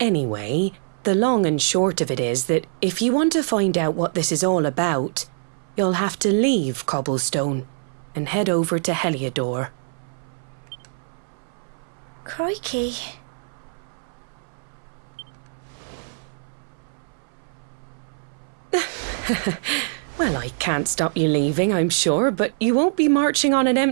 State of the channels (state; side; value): silent; left; 63 dB below the other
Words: Anyway, the long and short of it is that if you want to find out what this is all about, you'll have to leave Cobblestone and head over to Heliodor. Crikey. Well, I can't stop you leaving, I'm sure, but you won't be marching on an